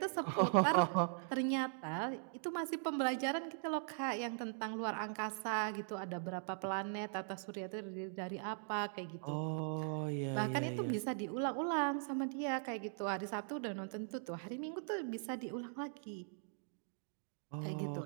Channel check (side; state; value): left; silent; digital silence